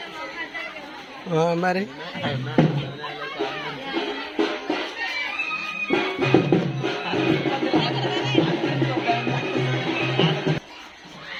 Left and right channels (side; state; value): both; identical; correlation 1.00